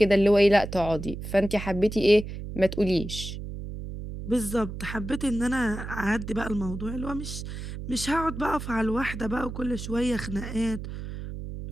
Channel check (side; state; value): right; noise; hum, 8 dB below the sound